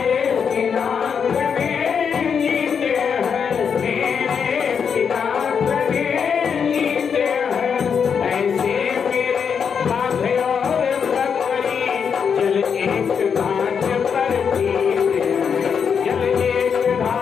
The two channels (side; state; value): right; quieter; 6.8 dB